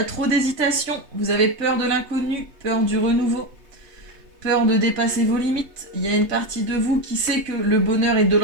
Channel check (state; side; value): late; left; 3.2 ms